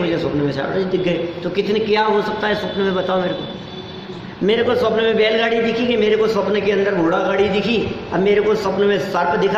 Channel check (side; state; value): both; identical; correlation 1.00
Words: स्वप्न में शारदा जी दिख गए। तो कितने क्या हो सकता है स्वप्न में, बताओ मेरे को। मेरे को स्वप्न में बैलगाड़ी दिखी कि मेरे को स्वप्न के अंदर घोड़ा गाड़ी दिखी, अब मेरे को स्वप्न में सर्प